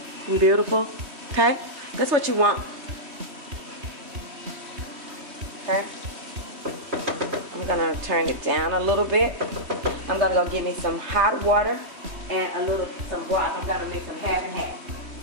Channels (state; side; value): late; left; 3.1 ms